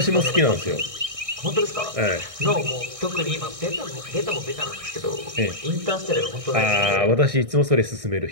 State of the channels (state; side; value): late; left; 1.6 ms